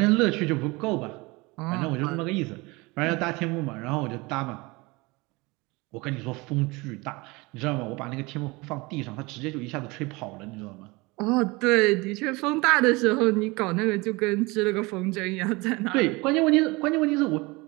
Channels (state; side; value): quieter; left; 24.3 dB